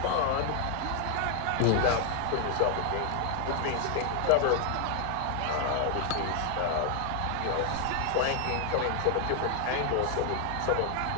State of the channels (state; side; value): different; both; correlation 0.00